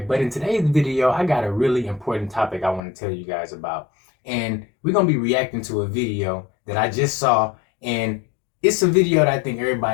But in today's video, I got a really important topic I want to tell you guys about. And we're going to be reacting to a video that I just saw. And it's a video that I think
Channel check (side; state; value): right; drops out; at 2.8 s